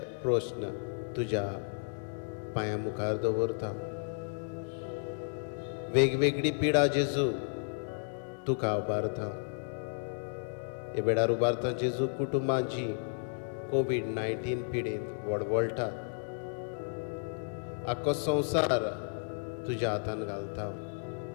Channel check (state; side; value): silent; right; digital silence